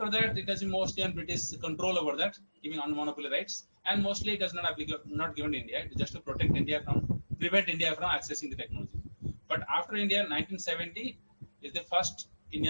that, it has been mostly on British control over that, giving on monopoly rights. And mostly it is not given to India. It is just to prevent India from accessing the technology. But after India, 1970 is the first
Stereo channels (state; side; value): inverted; both; correlation -1.00